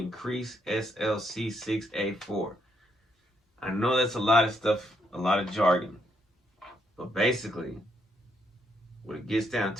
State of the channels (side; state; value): both; normal; correlation 0.75